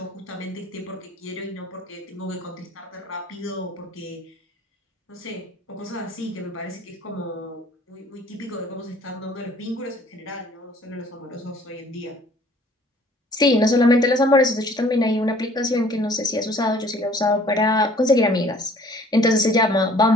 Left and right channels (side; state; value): both; normal; correlation 0.54